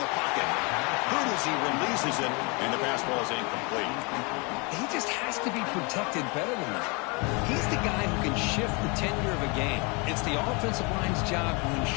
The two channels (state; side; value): quieter; right; 30.5 dB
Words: the pocket. Good as he releases it, and the pass ball is incomplete. He just has to be protected better than that. He's the guy who can shift the tenure of a game. It's the offensive line's job to